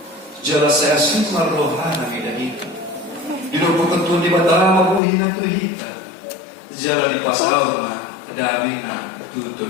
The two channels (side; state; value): right; drops out; at 5.0 s